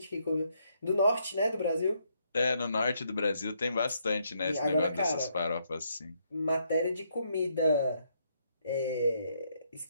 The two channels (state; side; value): inverted; both; correlation -0.74